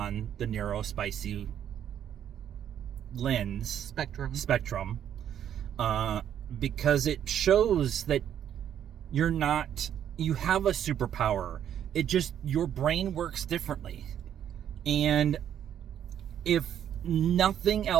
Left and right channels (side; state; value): left; quieter; 9.8 dB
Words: the neurospicy spectrum, because it shows that you have a superpower. It just, your brain works differently. And if nothing